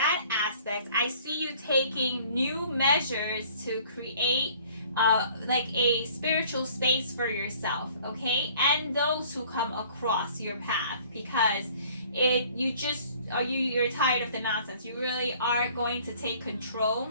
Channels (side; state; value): both; inverted; correlation -0.54